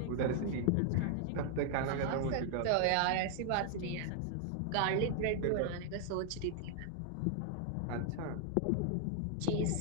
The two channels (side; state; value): both; different; correlation 0.00